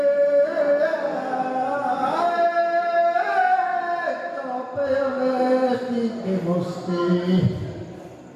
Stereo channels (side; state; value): both; identical; correlation 1.00